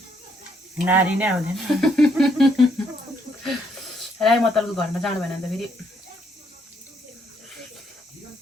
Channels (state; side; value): normal; both; correlation 0.71